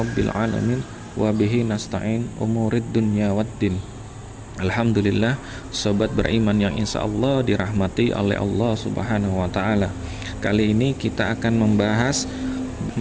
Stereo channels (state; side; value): identical; both; correlation 1.00